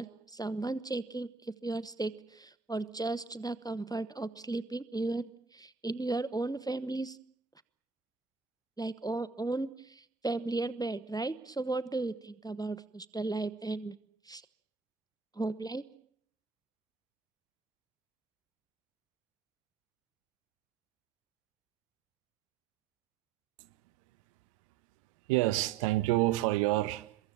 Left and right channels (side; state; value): left; quieter; 5.8 dB